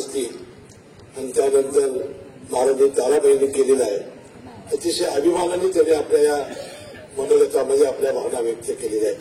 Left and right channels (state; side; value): identical; both; correlation 1.00